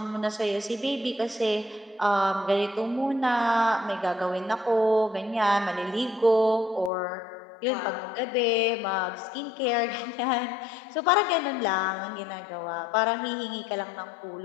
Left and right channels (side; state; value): right; drops out; at 6.9 s